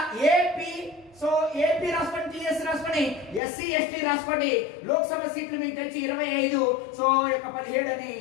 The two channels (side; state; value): right; drops out; at 3.4 s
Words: ఏపీ, సో ఏపీ రాసుకోండి, టీఎస్ రాసుకోండి, ఎస్సీ ఎస్టీ రాసుకోండి. లోక్సభ సీట్లు మీకు తెలిసి 25, సో 17 అని